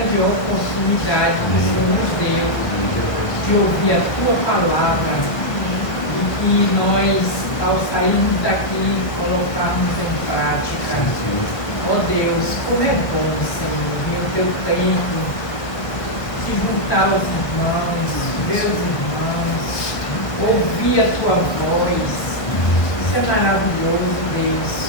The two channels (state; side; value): late; right; 1.6 ms